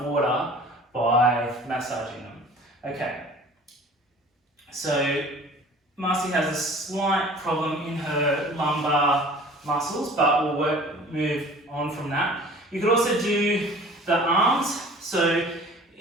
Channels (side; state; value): both; normal; correlation 0.46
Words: water by massaging them. Okay. So Marcy has a slight problem in her lumbar muscles, but we'll move on from that. You could also do the arms. So